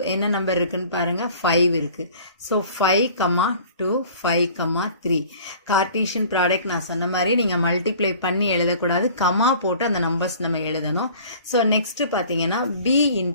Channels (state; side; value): inverted; both; correlation -0.48